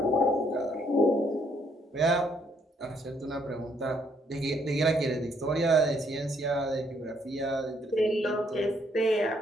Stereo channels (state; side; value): normal; both; correlation 0.69